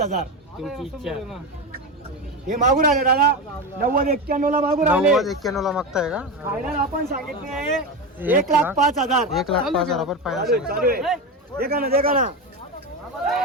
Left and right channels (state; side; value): normal; both; correlation 0.18